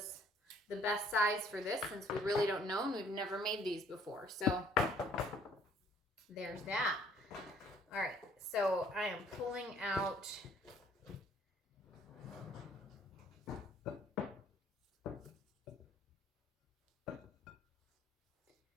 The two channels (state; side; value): normal; both; correlation 0.60